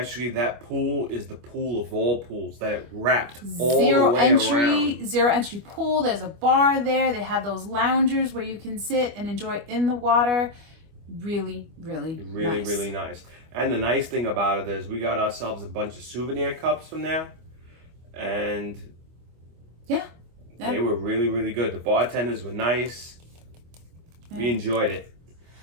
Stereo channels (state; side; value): late; left; 25 ms